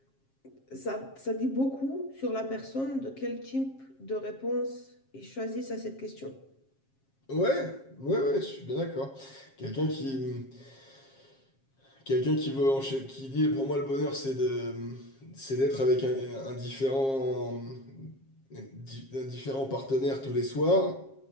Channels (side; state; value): right; late; 7.4 ms